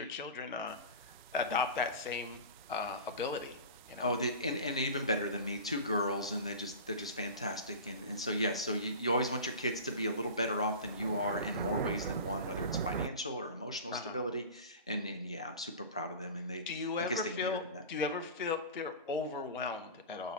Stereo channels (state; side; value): inverted; both; correlation -0.33